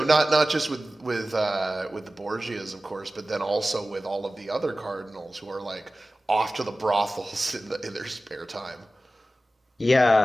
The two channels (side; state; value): both; normal; correlation 0.96